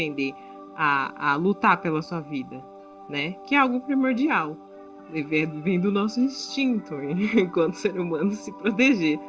a lutar pela sua vida, né? Que é algo primordial. Vem do nosso instinto, enquanto ser humano, se proteger,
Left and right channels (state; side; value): identical; both; correlation 1.00